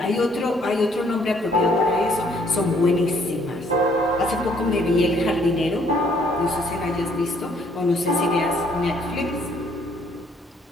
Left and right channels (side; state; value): both; normal; correlation 0.64